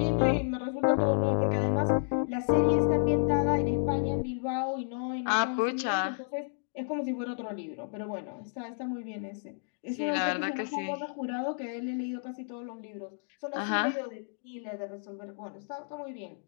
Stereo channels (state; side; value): silent; right; 57 dB below the other